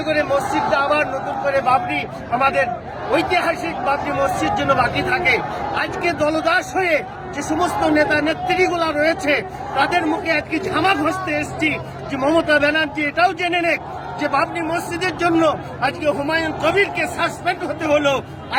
করে মসজিদটা আবার নতুন করে বাবরি, আমাদের ঐতিহাসিক বাবরি মসজিদ যেন বাকি থাকে। আজকে দলদাস হয়ে যে সমস্ত নেতা নেত্রীগুলা রয়েছে তাদের মুখে আজকে ঝামা ঘষতে এসছি যে মমতা ব্যানার্জি এটাও জেনে নেক যে বাবরি মসজিদের জন্য আজকে হুমায়ুন কবিরকে সাসপেন্ড হতে হলো।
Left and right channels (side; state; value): both; identical; correlation 1.00